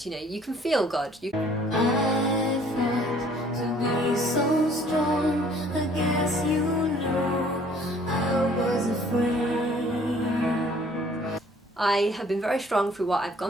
you know, you can feel God. I fought to be so strong, I guess you know I was afraid. I have been very strong through what I've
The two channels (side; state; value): both; normal; correlation 0.57